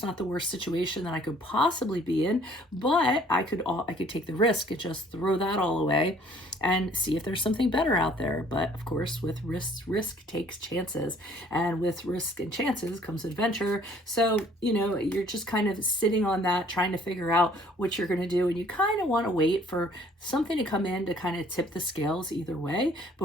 not the worst situation that I could possibly be in, but I could take the risk and just throw that all away and see if there's something better out there. But of course, with risk takes chances, and with risk and chances comes adventure. So, you're just kind of sitting on that, trying to figure out what you're going to do. And you kind of want to wait for something to come in to kind of tip the scales either way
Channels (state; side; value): normal; both; correlation 0.57